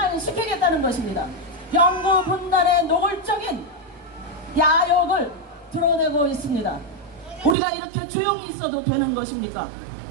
것입니다. 영구 분단의 노골적인 야욕을 드러내고 있습니다. 우리가 이렇게 조용히 있어도 되는 것입니까?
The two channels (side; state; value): left; drops out; at 7.6 s